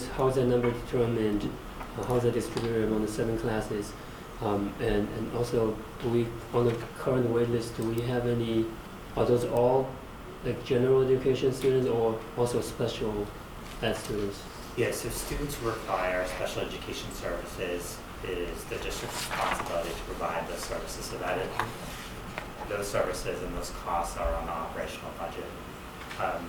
how is that number determined? How is that distributed among the 7 classes? And also, do we, on the current wait list, do we have any, are those all like general education students or also special ed students? Yes, so students who require special education services is the district's responsibility to provide those services, so that those services and those costs are on the operational budget.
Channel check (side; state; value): both; identical; correlation 1.00